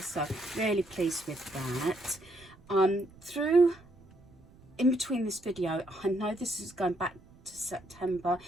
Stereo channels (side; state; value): right; noise; rumble, 25 dB below the sound